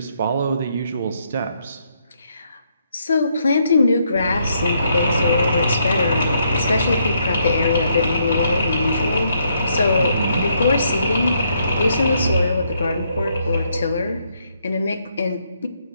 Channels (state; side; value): inverted; both; correlation -0.74